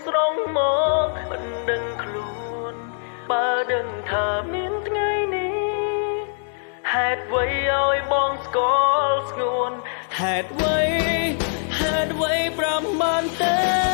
ស្រងមកមិនដឹងខ្លួនបើដឹងថាមានថ្ងៃនេះហេតុអ្វីឲ្យបងស្គាល់ស្ងួនហេតុអ្វី5បានទេ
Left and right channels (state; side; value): silent; right; digital silence